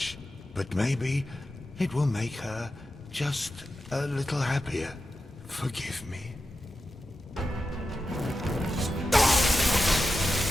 But maybe it will make her just a little happier. Forgive me.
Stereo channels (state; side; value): normal; both; correlation 0.91